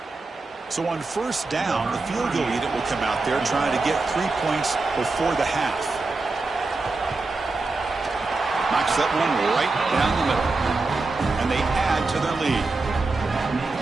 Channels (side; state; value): left; quieter; 3.6 dB